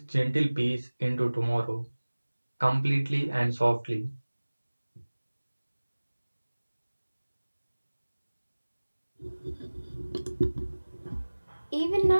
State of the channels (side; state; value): both; inverted; correlation -1.00